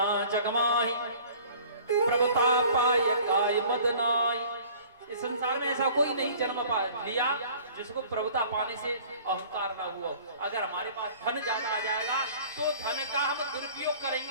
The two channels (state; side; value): inverted; both; correlation -0.49